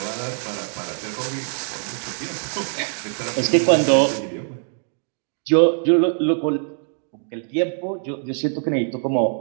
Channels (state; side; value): silent; left; 62 dB below the other